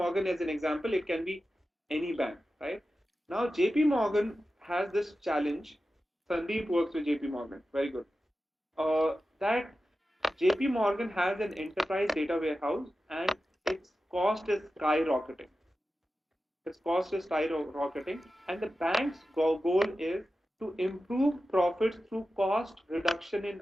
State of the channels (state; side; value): normal; both; correlation 0.93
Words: as an example. It can be any bank, right? Now, JP Morgan has this challenge. Sandeep works with JP Morgan. Very good. That JP Morgan has an enterprise data warehouse and its cost is skyrocketing. Its cost is skyrocketing, and the bank's goal is to improve profits through cost reduction